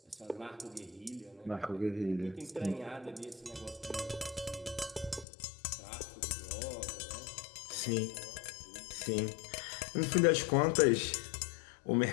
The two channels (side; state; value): right; drops out; at 5.2 s